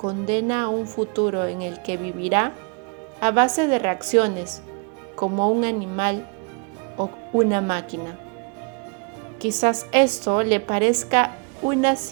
a un futuro en el que vivirá a base de reacciones, como un animal o una máquina. Quizás esto le parezca una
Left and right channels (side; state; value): left; quieter; 34.3 dB